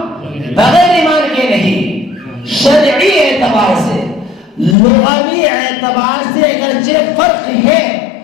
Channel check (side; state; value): right; drops out; at 4.8 s